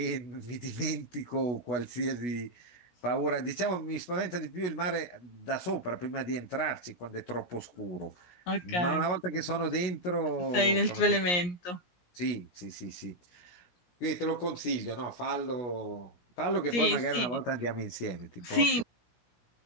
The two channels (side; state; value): right; late; 17 ms